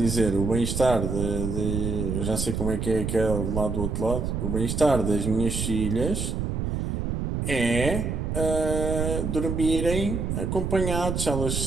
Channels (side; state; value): right; noise; rumble, 2 dB below the sound